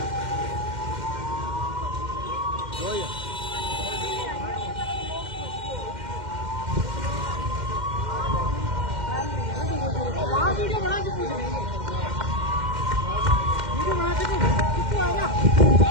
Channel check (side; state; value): left; late; 2.1 ms